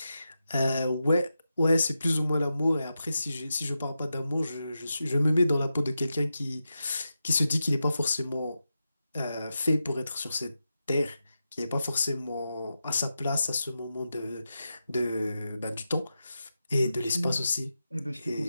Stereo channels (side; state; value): both; inverted; correlation -0.90